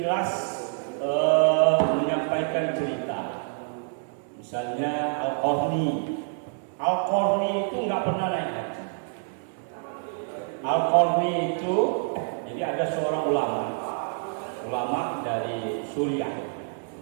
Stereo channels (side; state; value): left; silent; 60 dB below the other